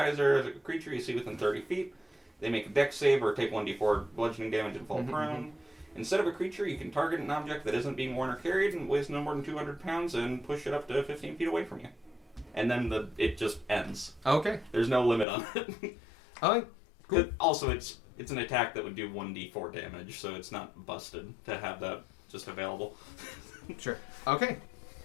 at a creature you see within 30 feet. They make a dex save or take 1d4 bludgeoning damage and fall prone. Instead of a creature, you can target an object that isn't being worn or carried and weighs no more than 200 pounds and push it up to 15 feet away from you. And then it just ends. Okay. There's no limit on it. Alright. Cool. Also, it's an attack that would do 1d4 damage, so it's not busted to have that just available. Sure. Okay.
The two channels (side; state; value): right; drops out; at 15.2 s